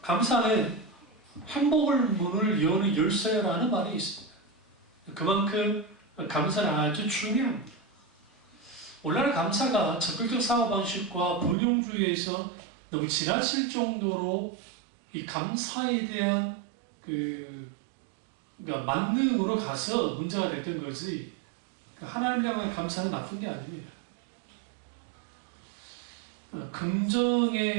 감사는 행복의 문을 여는 열쇠라는 말이 있습니다. 그만큼 감사는 아주 중요합니다. 오늘날 감사가 적극적 사고방식과 번영주의에서 너무 지나칠 정도로 이 감사에 대한 그러니까 만능으로 가서 문제가 됐던 거지, 하나님을 향한 감사는 나쁜 게 아닙니다.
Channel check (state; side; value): drops out; left; at 11.6 s